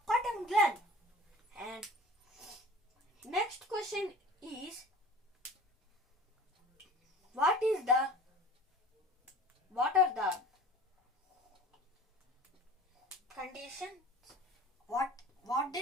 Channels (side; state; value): both; normal; correlation 0.42